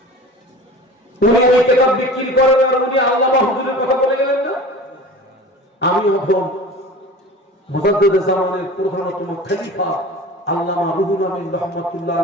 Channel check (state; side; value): normal; both; correlation 0.38